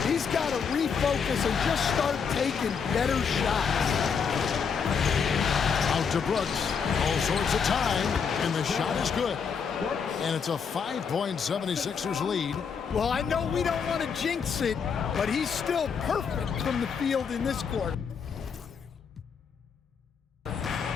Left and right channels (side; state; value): right; quieter; 6.3 dB